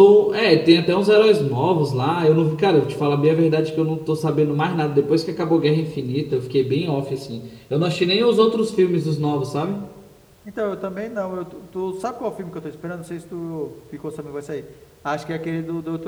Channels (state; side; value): identical; both; correlation 1.00